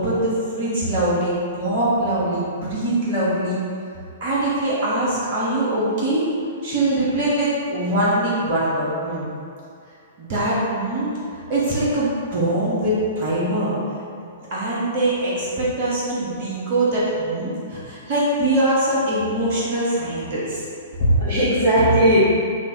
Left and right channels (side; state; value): both; inverted; correlation -0.38